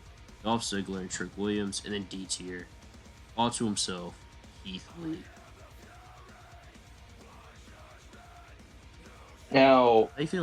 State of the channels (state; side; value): identical; both; correlation 1.00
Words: Dolph Ziggler, and Trick Williams. And then D tier, all to himself, Keith Lee. Now, How you